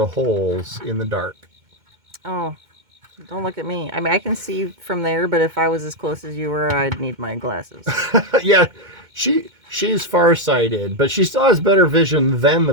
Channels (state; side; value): late; left; 2.2 ms